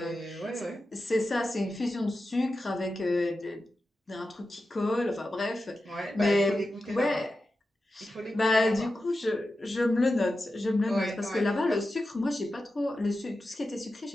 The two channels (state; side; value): normal; both; correlation 0.92